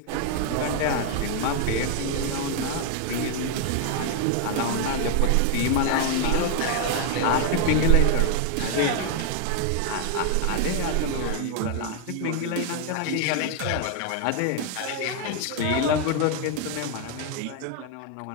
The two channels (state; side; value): different; both; correlation 0.00